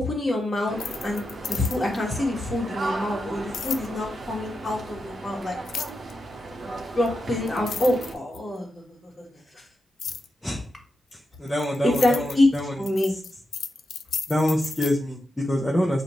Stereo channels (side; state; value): both; normal; correlation 0.88